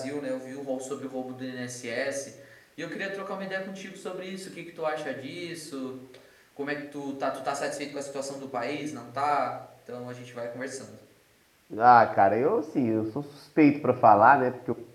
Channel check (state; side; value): identical; both; correlation 1.00